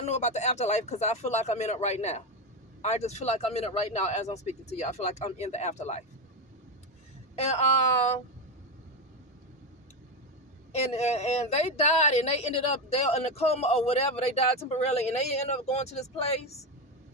know about the afterlife, because I feel like I'm in it right now. I just feel like I'm in it right now as I'm speaking to you. I feel like I'm in the afterlife. And they died and they ended up there in a coma or whatever. They died temporarily and they ended up going to this place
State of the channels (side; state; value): both; normal; correlation 0.13